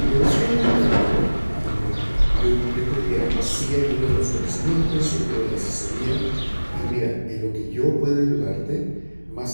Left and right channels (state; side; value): inverted; both; correlation -1.00